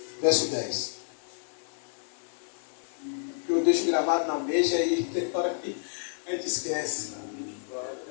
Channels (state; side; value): silent; right; digital silence